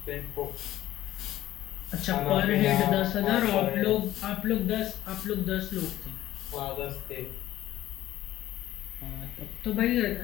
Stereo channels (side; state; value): right; quieter; 14.1 dB